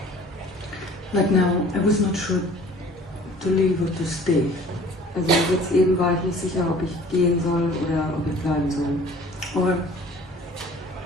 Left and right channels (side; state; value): both; normal; correlation 0.50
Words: Like now, I was not sure to leave or to stay. Also jetzt eben war ich nicht sicher, ob ich gehen soll oder ob ich bleiben soll. Or